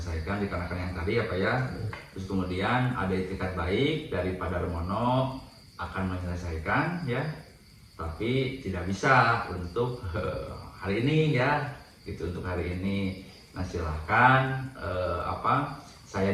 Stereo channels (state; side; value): identical; both; correlation 1.00